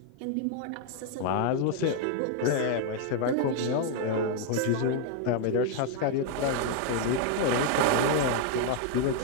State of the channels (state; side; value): different; both; correlation 0.00